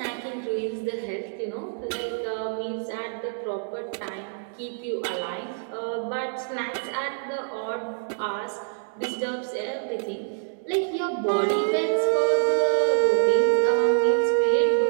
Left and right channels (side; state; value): left; silent; digital silence